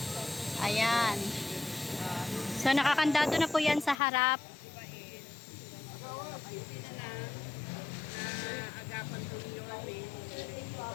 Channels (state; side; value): drops out; right; at 4.0 s